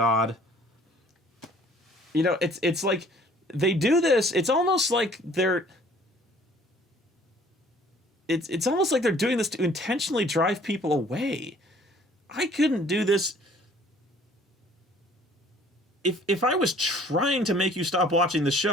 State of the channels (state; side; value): normal; both; correlation 0.55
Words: It's like they do this. It's almost like they're. It's almost like they're doing this to intentionally drive people away. I couldn't do this. If I was trying to make you stop watching the